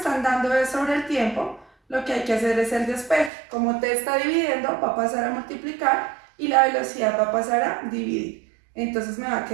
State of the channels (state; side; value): drops out; left; at 3.3 s